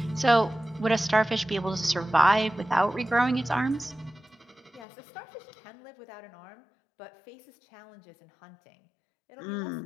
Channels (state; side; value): drops out; right; at 4.9 s